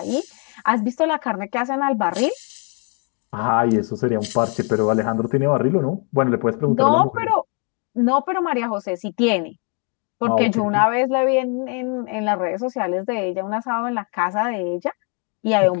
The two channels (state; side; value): quieter; right; 35.8 dB